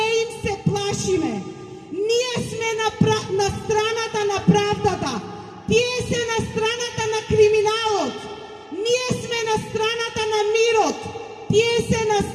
им се плашиме. Ние сме на страната на правдата, тие се на страната на криминалот. Ние сме на страната на мирот, тие се на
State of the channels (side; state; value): both; identical; correlation 1.00